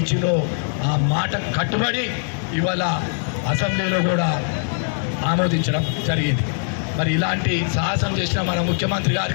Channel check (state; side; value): silent; right; 65 dB below the other